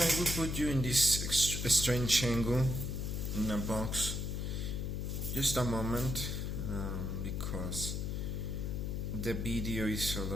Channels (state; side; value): noise; left; hum, 2 dB below the sound